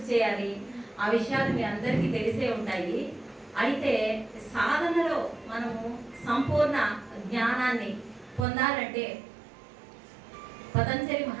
చేయాలి, ఆ విషయాలు మీ అందరికీ తెలిసే ఉంటాయి. అయితే సాధనలో మనము సంపూర్ణ జ్ఞానాన్ని పొందాలంటే పతంజలి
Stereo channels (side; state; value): left; drops out; at 8.5 s